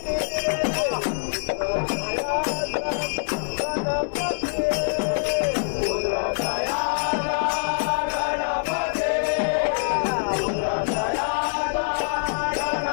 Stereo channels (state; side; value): silent; right; digital silence